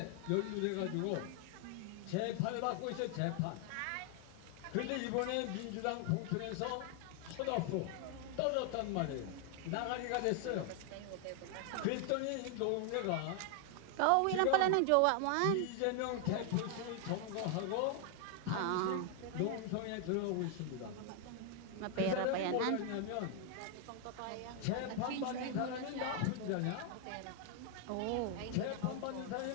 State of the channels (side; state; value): both; different; correlation 0.00